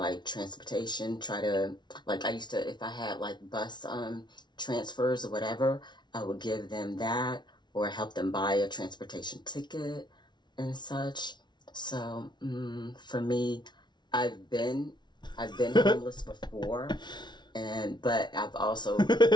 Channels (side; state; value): right; late; 0.21 ms